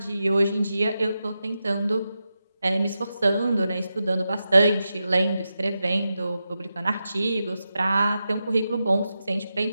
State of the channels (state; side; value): inverted; both; correlation -0.89